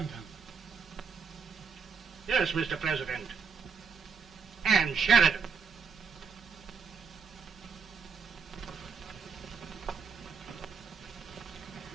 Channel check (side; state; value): left; quieter; 5.6 dB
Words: Yes, Mr. President. And Sheridan.